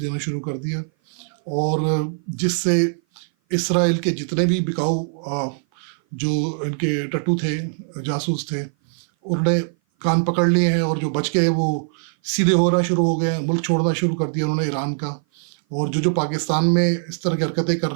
شروع کر دیا. اور جس سے اسرائیل کے جتنے بھی بکاؤ جو ان کے ٹٹو تھے، جاسوس تھے، انہوں نے کان پکڑ لیے ہیں، اور جو بچ گئے وہ سیدھے ہونا شروع ہو گئے ہیں، ملک چھوڑنا شروع کر دیا انہوں نے ایران کا. اور جو پاکستان میں اس طرح کی حرکتیں کر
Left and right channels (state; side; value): silent; left; 57 dB below the other